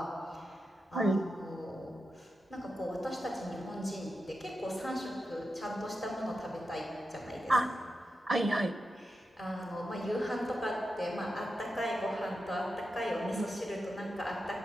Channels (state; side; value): normal; both; correlation 0.89